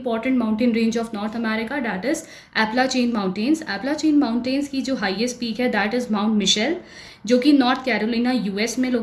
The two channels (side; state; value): both; identical; correlation 1.00